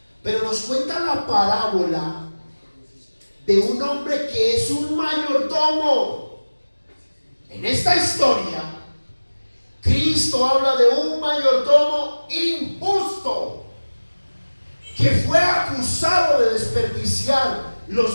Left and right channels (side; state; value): both; inverted; correlation -1.00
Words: pero nos cuenta la parábola de un hombre que es un mayordomo. En esta historia, Cristo habla de un mayordomo injusto que fue acusado de desperdiciar